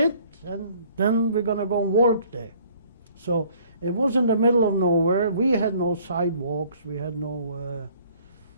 and then we're going to go and work there. So it was in the middle of nowhere. We had no sidewalks. We had no,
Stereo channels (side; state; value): both; inverted; correlation -0.58